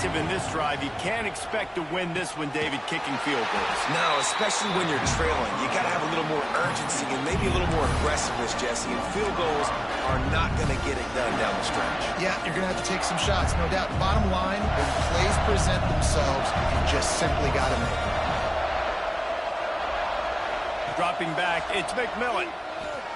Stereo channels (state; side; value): identical; both; correlation 1.00